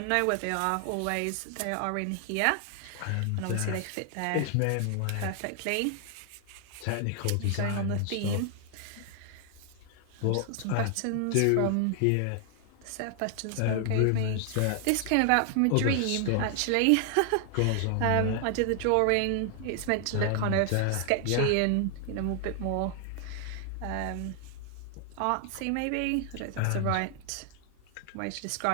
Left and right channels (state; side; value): different; both; correlation 0.00